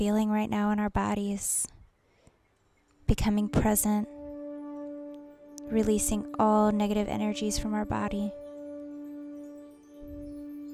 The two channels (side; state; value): both; identical; correlation 1.00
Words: right now in our bodies, becoming present, releasing all negative energies from our body.